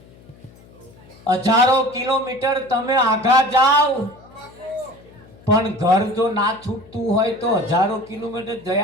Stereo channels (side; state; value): left; noise; hum, 24 dB below the sound